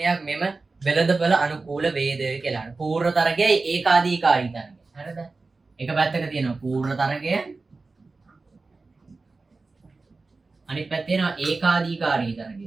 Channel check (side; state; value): left; quieter; 3.8 dB